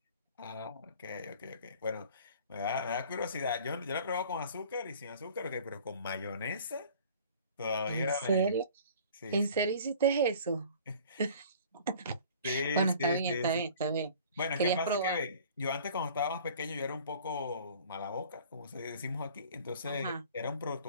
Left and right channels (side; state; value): both; inverted; correlation -0.48